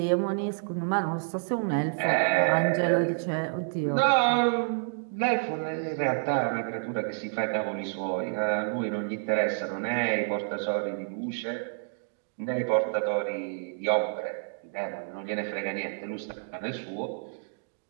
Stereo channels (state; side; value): silent; left; digital silence